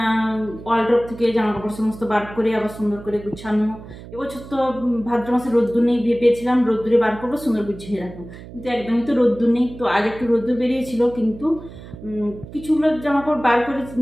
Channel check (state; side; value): noise; right; hum, 15 dB below the sound